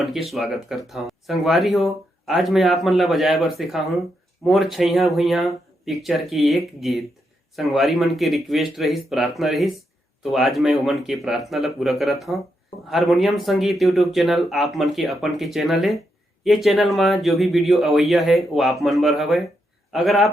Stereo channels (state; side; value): normal; both; correlation 0.82